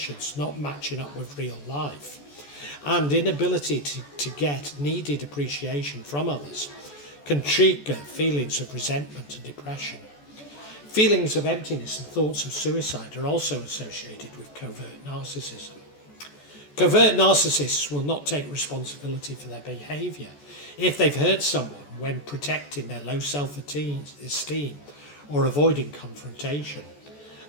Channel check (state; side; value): late; right; 14 ms